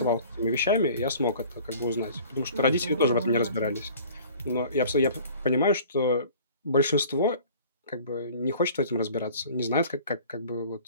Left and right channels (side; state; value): both; inverted; correlation -0.47